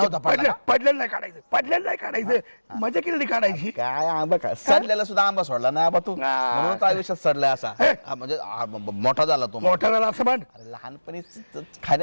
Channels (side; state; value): both; inverted; correlation -1.00